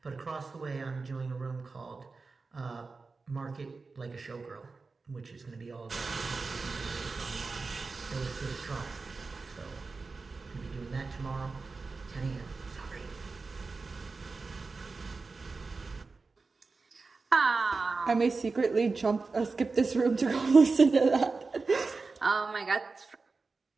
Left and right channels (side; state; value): left; quieter; 4.1 dB